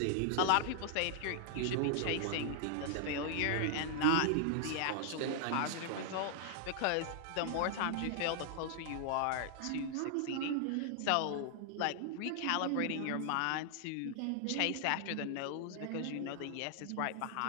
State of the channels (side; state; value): both; different; correlation -0.01